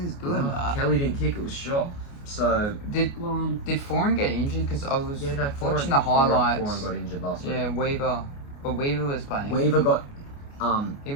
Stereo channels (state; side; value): late; right; 29 ms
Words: good. No, Kelly didn't kick; it was shot. So did Foran get injured? Because I was watching Foran, the highlights. Foran got injured last week. Yeah, Weaver, but Weaver was playing. Weaver got he